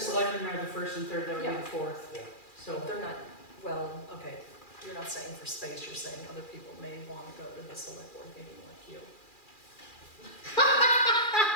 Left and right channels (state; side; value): late; right; 2.4 ms